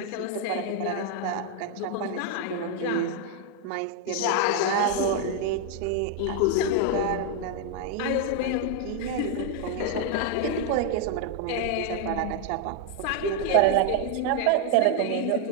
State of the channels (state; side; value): different; both; correlation 0.00